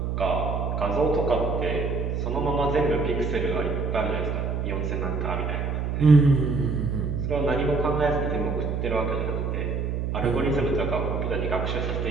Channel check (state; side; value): noise; right; hum, 1 dB below the sound